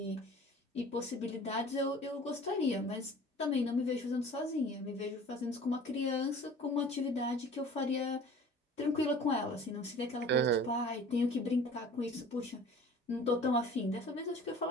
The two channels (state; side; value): normal; both; correlation 0.45